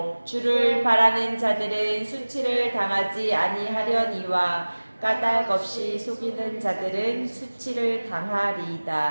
주를 바라는 자들은 수치를 당하지 아니하려니와 까닭 없이 속이는 자들은 수치를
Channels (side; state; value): both; inverted; correlation -1.00